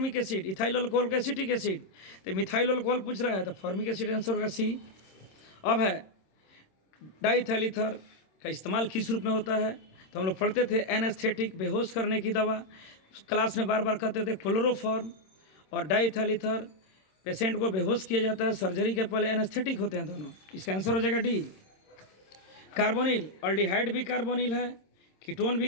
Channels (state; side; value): late; right; 26 ms